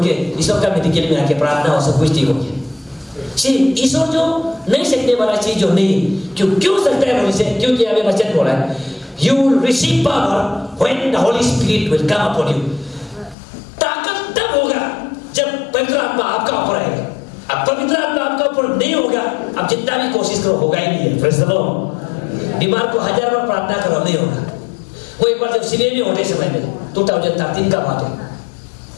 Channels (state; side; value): drops out; right; at 13.4 s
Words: के ईश्वर का मेडिकल में आके प्रार्थना हो, सब कुछ ठीक हो गया। ईश्वर जो नहीं सकने वाला चीज जो नहीं, क्यों सकता है बोले, क्योंकि हमें वचन बोला है, you will receive power when the Holy Spirit will come upon you। ताकत तब होगा जब पवित्र आत्मा आपका ऊपर आएगा। अब पवित्र आत्मा आपका ऊपर नहीं होगा, अब जितना भी कोशिश करो होगा ही नहीं है। Praise the Lord. बीमार को 1000 बार प्रार्थना करो, नहीं होगा। वो एक बार जब सिविल में होने समय में 2013 का बात है,